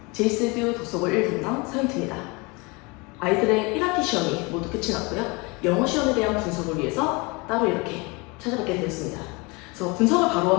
제이스듀 독서고 1분당 서윤트입니다. 아이들의 1학기 시험이 모두 끝이 났고요. 영어 시험에 대한 분석을 위해서 따로 이렇게 찾아뵙게 되었습니다. 그래서 분석을 바로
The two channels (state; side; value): quieter; right; 27.4 dB